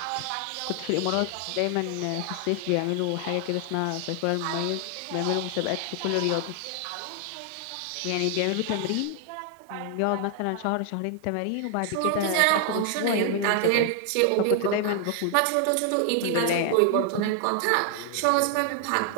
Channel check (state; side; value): different; both; correlation 0.00